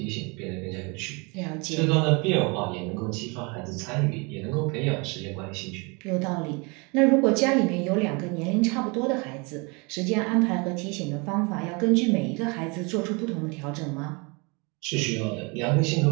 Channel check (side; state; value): left; quieter; 29.8 dB